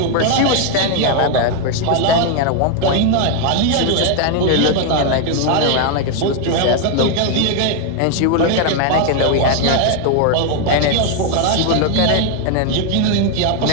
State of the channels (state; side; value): different; both; correlation 0.00